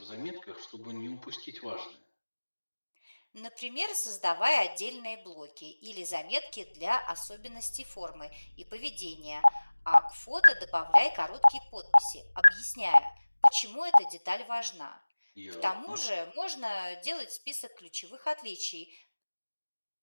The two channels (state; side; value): inverted; both; correlation -1.00